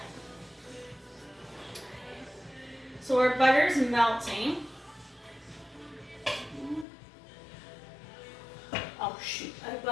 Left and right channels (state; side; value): drops out; right; at 6.9 s